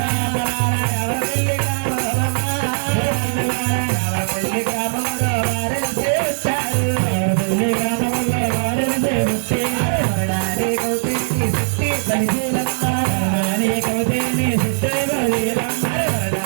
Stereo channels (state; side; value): silent; left; 60 dB below the other